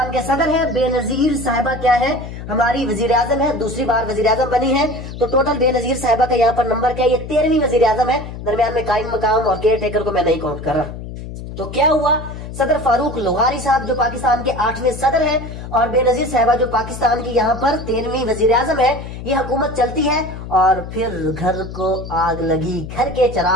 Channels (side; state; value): left; noise; hum, 10 dB below the sound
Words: के सदर हैं, बेनजीर साहिबा क्या है, हमारी वजीर आजम है, दूसरी बार वजीर आजम बनी है। तो टोटल बेनजीर साहिबा का यहाँ पर नंबर क्या है, ये 13वीं वजीर आजम है, दरमियान में कायम मकाम और केयर टेकर को मैं नहीं काउंट कर रहा। तो क्या हुआ, सदर फारूक लगारी साहब जो पाकिस्तान के 8वें सदर हैं, और बेनजीर साहिबा जो पाकिस्तान की यहाँ पर 13वीं वजीर आजम है, ये हुकूमत चलती है। और फिर घर को आग लगी, घर के